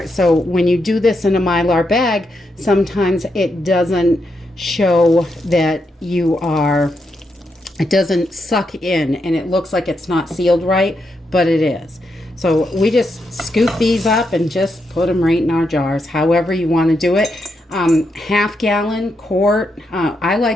So when you do this in a Mylar bag, sometimes it doesn't show that it doesn't suck in and it looks like it's not sealed right, but it is. So we just scoop these up and just put them right in our jars, however you want to do it. Half gallon, quart. I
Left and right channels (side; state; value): both; normal; correlation 0.82